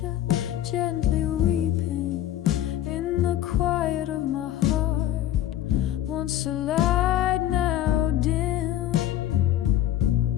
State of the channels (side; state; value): right; quieter; 12.5 dB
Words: gently weeping in the quiet of my heart. Once a light, now dim.